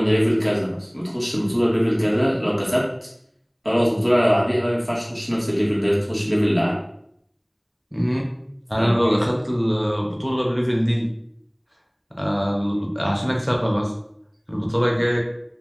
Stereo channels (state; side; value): identical; both; correlation 1.00